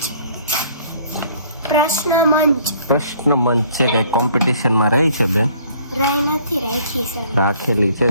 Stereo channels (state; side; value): inverted; both; correlation -0.57